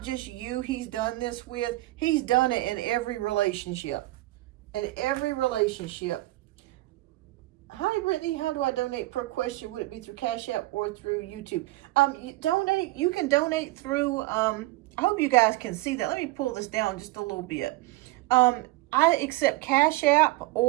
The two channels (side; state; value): left; quieter; 19.2 dB